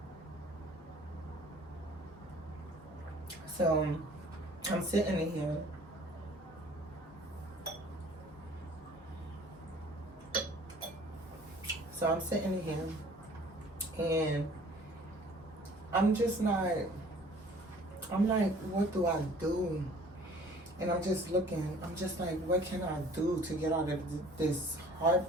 So, I'm sitting in here. So I'm sitting in here, and I'm just not. I'm like, what do I do? And I'm just looking. I'm just like, what can I do to get out of this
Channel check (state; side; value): normal; both; correlation 0.52